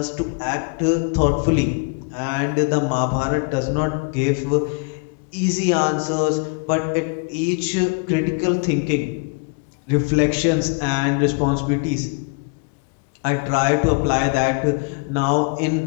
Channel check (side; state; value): right; quieter; 33.9 dB